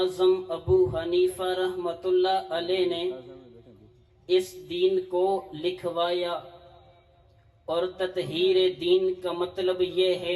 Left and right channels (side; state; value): both; identical; correlation 1.00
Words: ابو حنیفہ رحمۃ اللہ علیہ نے اس دین کو لکھوایا۔ اور تطہیر دین کا مطلب یہ